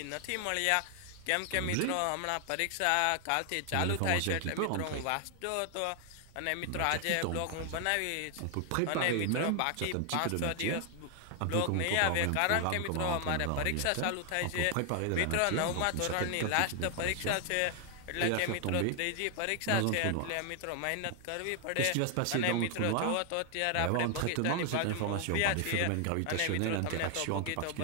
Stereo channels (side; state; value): both; different; correlation 0.00